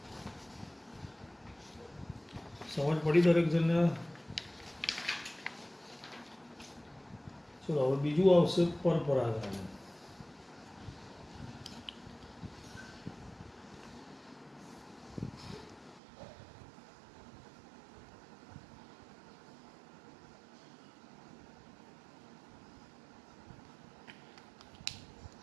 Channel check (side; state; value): left; drops out; at 16.0 s